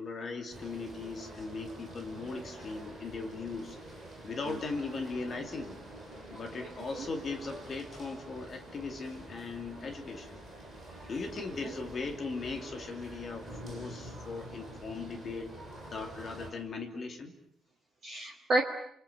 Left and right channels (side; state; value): both; normal; correlation 0.78